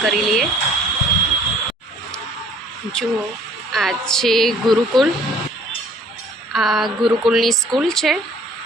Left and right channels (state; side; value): normal; both; correlation 0.56